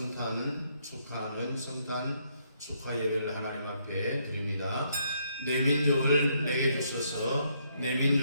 축하하는 성탄 축하 예배를 하나님 앞에 드립니다. 내 민족을 내게 주소서, 내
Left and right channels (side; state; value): both; inverted; correlation -0.73